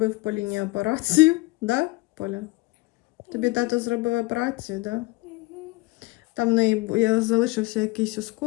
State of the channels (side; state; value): right; quieter; 22.2 dB